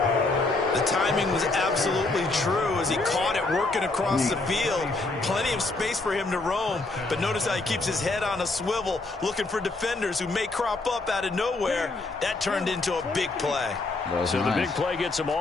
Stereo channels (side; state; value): right; quieter; 3.3 dB